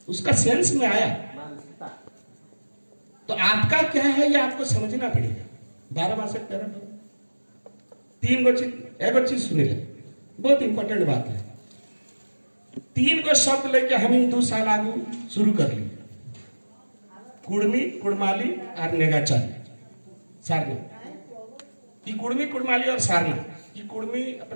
उसका सेंस में आया। तो आपका क्या है ये आपको समझना पड़ेगा। 12 मास 3 गो चीज एगो चीज सुनी ले, बहुत इंपॉर्टेंट बात है। 3 गो शब्द लेके हम 2 साल आगू शुरू कर लिए, कुड़मी कुड़माली और नेगाचारी सारना। ये कुड़मी कुड़माली और सारना, ये कुड़मी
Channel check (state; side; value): inverted; both; correlation -1.00